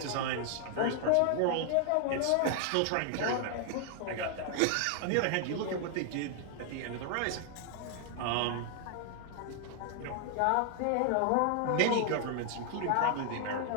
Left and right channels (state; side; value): different; both; correlation 0.00